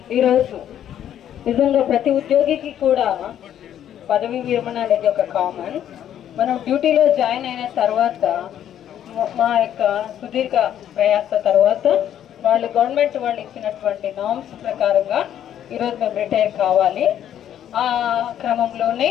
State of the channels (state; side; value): quieter; right; 10.5 dB